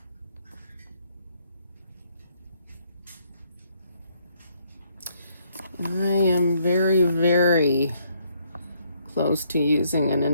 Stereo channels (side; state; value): both; inverted; correlation -0.70